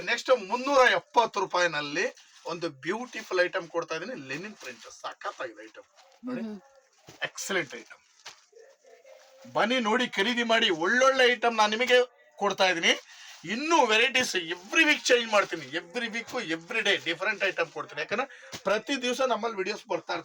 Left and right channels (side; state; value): both; identical; correlation 1.00